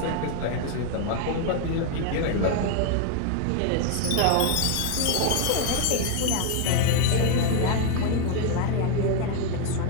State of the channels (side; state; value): both; different; correlation 0.01